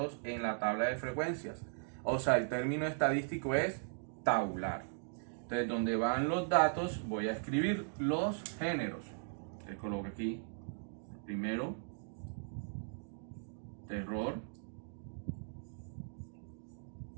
en la tabla de frecuencias. O sea, el término estadístico es tabular. Entonces, donde van los datos, voy a escribir los géneros. Le coloco aquí, primero, terror,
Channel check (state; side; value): silent; left; digital silence